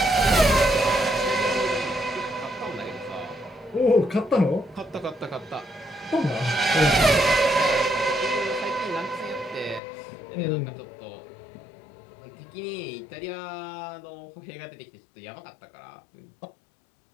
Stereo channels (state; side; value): drops out; right; at 9.8 s